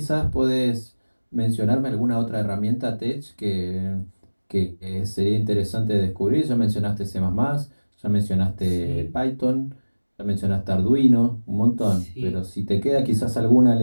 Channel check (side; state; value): both; inverted; correlation -1.00